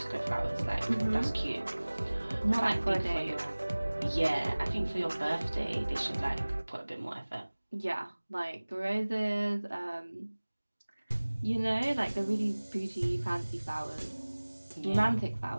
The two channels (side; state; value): both; inverted; correlation -1.00